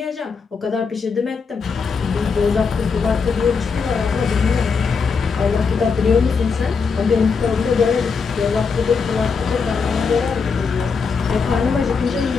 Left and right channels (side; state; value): right; quieter; 5.3 dB